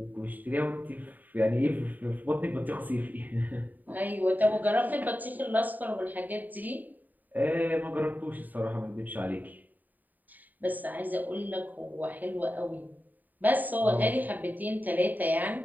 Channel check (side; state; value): left; late; 0.085 ms